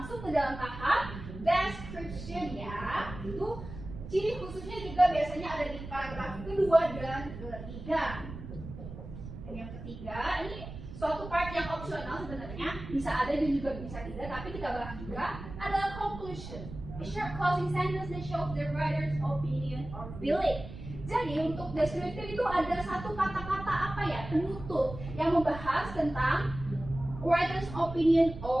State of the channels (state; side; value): noise; right; rumble, 11 dB below the sound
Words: ke dalam tahap description ya. Itu ciri khususnya juga biasanya ada di paragraf kedua dan ketiga. Dan yang ketiga, ini suatu part yang opsional sebenarnya, bisa ada dan juga bisa tidak, tapi kita bahas juga adalah conclusion. A short closing sentence that shows the writer's opinion or feeling. Jadi untuk deskriptif itu ada satu kata-kata apa ya, penutup yang membahas tentang writer's opinion